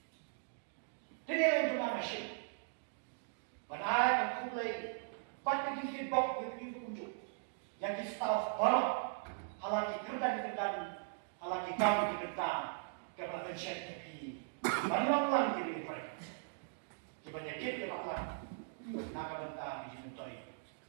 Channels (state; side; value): silent; left; digital silence